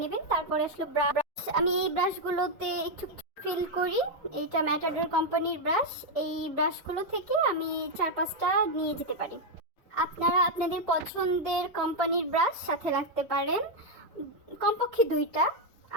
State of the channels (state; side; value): normal; both; correlation 0.01